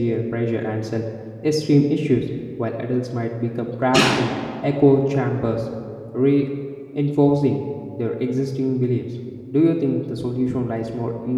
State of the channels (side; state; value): both; identical; correlation 1.00